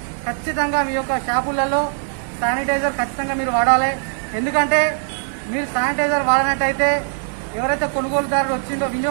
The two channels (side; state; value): left; silent; digital silence